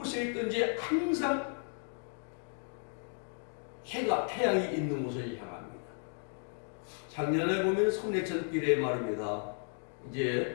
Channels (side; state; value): right; silent; 55 dB below the other